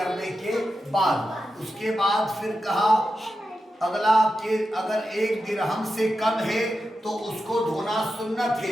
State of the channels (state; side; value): normal; both; correlation 0.90